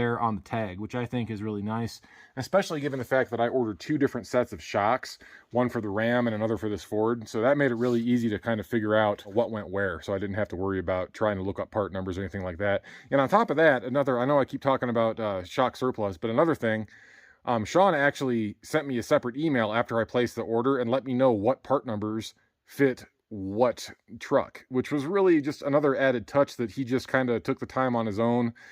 on the tag, which I think is really nice, especially given the fact that I ordered 2 different sets of shocks, one for the Ram and another for this Ford. So that made it really easy to kind of figure out what went where, so I didn't have to worry about trying to look up part numbers or anything like that. And on top of that, I know I keep talking about Shock Surplus, but another thing, Sean actually sent me a separate email after I placed the order and let me know what part numbers fit what truck, which was really just another added touch that he just kind of took the time on his own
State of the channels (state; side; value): identical; both; correlation 1.00